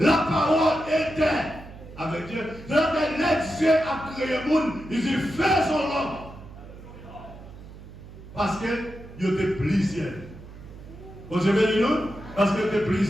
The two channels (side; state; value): right; noise; hum, 16 dB below the sound